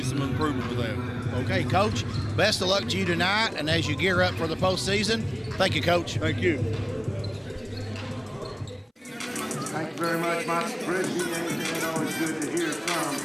some improvement with that. Okay, Coach, best of luck to you tonight, and as you gear up for the postseason. Thank you, Coach. Thank you. Thank you very much, Mike Bridgie. It's always good to hear from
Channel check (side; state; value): both; identical; correlation 1.00